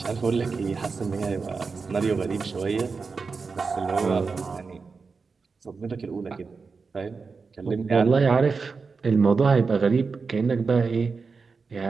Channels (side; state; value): left; quieter; 4.8 dB